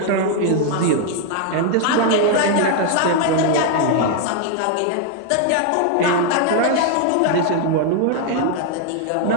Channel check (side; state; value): both; different; correlation 0.00